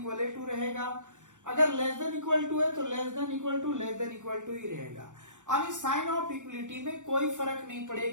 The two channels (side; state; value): left; late; 0.86 ms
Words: टू रहेगा, अगर लेस देन इक्वल टू है तो लेस देन इक्वल टू ही रहेगा। यानी साइन ऑफ इक्वलिटी में कोई फर्क नहीं